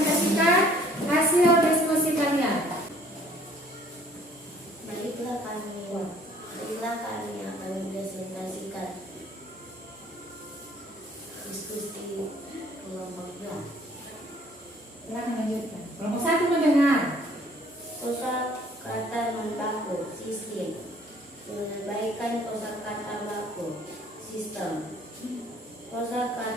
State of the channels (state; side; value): normal; both; correlation 0.57